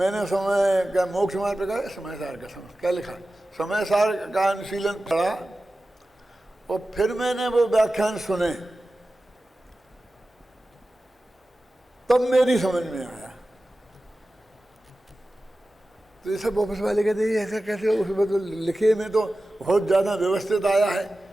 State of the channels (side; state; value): both; normal; correlation 0.95